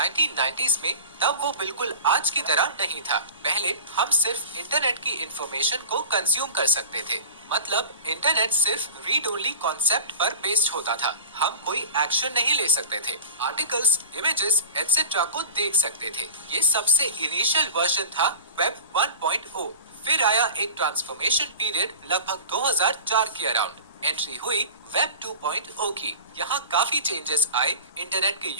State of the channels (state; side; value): inverted; both; correlation -0.37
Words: में, तब वो बिल्कुल आज की तरह नहीं था। पहले हम सिर्फ इंटरनेट की इंफॉर्मेशन को कंज्यूम कर सकते थे, मतलब इंटरनेट सिर्फ रीड ओनली कॉन्सेप्ट पर बेस्ड होता था। हम कोई एक्शन नहीं ले सकते थे, आर्टिकल्स, इमेजेस एटसेट्रा को देख सकते थे। ये सबसे इनिशियल वर्जन था वेब 1.0। फिर आया एक ट्रांसफॉर्मेशन पीरियड लगभग 2004 के अराउंड। एंट्री हुई वेब 2.0 की। यहाँ काफी चेंजेस आए, इंटरनेट के